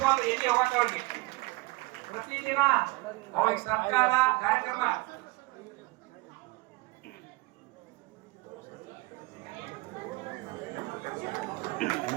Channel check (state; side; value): quieter; left; 22.5 dB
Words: ಎಲ್ಲಿ ಹೋಗಕ್ಕೆ ಅವ್ರಿಗೆ ಪ್ರತಿದಿನ ಅವ್ರಿಗೆ ಸರ್ಕಾರ ಕಾರ್ಯಕ್ರಮ